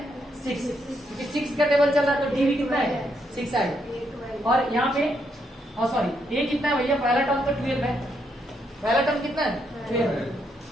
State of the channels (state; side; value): normal; both; correlation 0.77